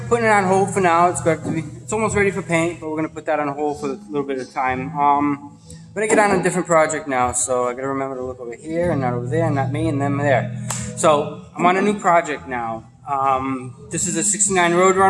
putting it on hold for now. It's almost ready for paint, but we're gonna put that on hold for a little bit of time. I'm gonna get on a different project now, so I gotta remember to look over here and not over there, and not me and them there. So I'm on a new project now. This is a '69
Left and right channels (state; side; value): identical; both; correlation 1.00